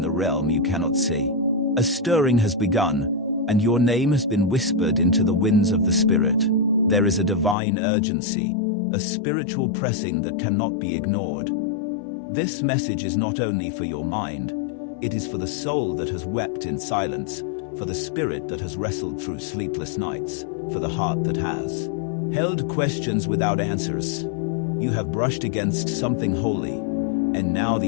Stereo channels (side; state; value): right; drops out; at 7.6 s